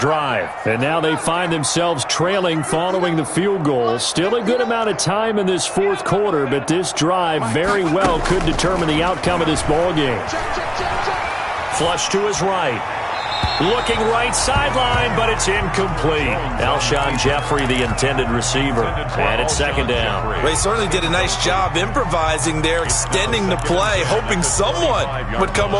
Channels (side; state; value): both; identical; correlation 1.00